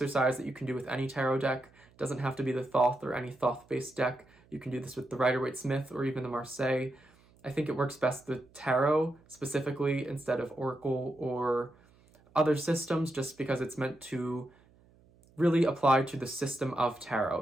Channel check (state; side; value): noise; right; hum, 29 dB below the sound